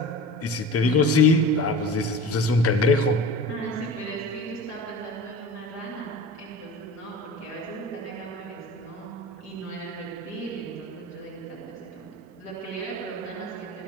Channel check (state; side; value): normal; both; correlation 0.35